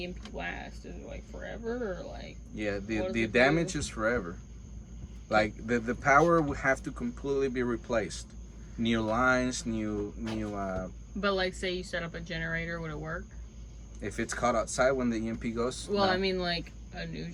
last? Is it like forever or like? Yeah, what does the it damage do? is forever. Like the power would have to completely be replaced. New lines, new But like, say you set up a generator, would it work? if it's caught outside when the EMP goes, Well, no. I mean, like a new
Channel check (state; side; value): identical; both; correlation 1.00